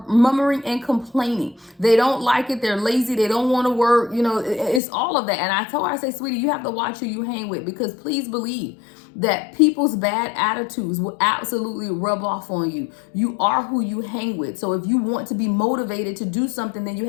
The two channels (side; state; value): right; drops out; at 4.8 s